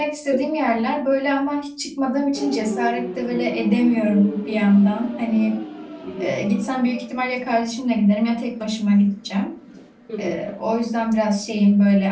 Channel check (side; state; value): both; identical; correlation 1.00